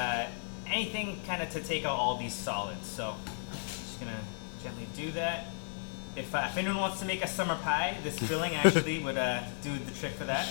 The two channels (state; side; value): silent; right; digital silence